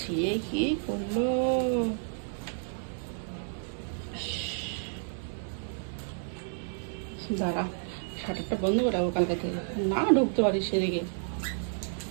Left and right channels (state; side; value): silent; left; digital silence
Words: ছিঁড়ে কি করলো। দাঁড়া, শাটারটা বন্ধ করে রাখবো কালকে থেকে, না ঢুকতে পারিস সেদিকে।